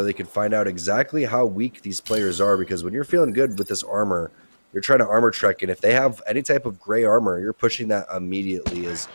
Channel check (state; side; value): inverted; both; correlation -1.00